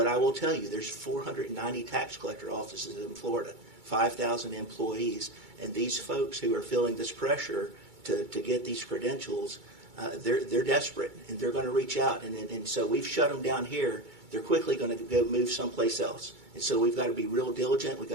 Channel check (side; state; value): left; late; 2.3 ms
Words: I will tell you, there's 490 tax collector offices in Florida. 5,000 employees. And these folks who are feeling this pressure to get these credentials, they're desperate, and they're going to reach out. And so we've shut them down here. They're quickly going to go move someplace else. And so we've got to be real diligent. We've